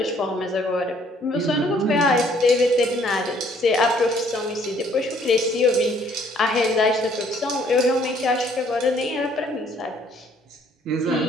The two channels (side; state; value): both; normal; correlation 0.62